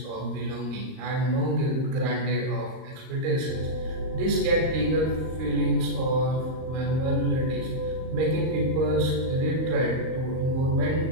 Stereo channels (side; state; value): left; late; 38 ms